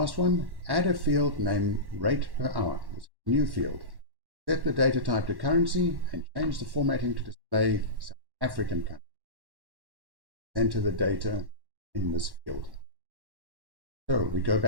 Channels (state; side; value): late; left; 1.1 ms